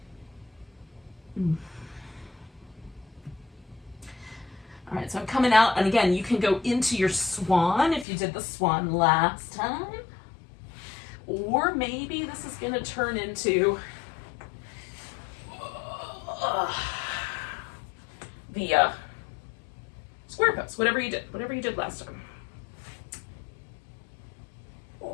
All right, so I'm coming out, and again, you can go into your swan if you did the swan last time. Or maybe this is going to turn into the square pose, whatever you did last time.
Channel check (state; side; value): drops out; right; at 8.1 s